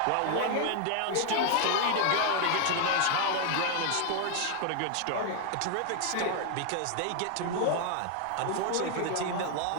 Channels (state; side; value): different; both; correlation 0.00